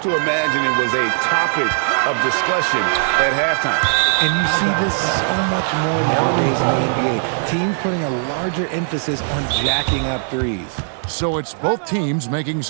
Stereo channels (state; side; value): silent; left; digital silence